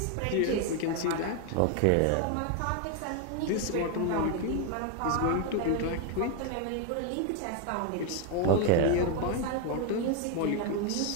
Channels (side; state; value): both; different; correlation 0.01